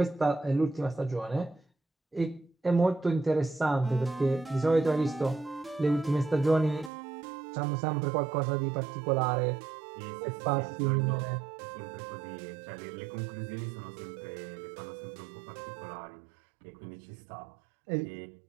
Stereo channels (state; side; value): drops out; left; at 6.9 s